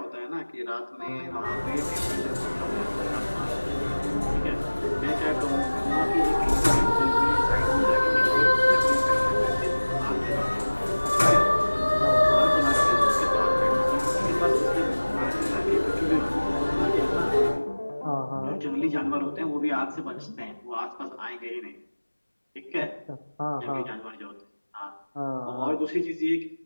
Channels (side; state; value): both; inverted; correlation -1.00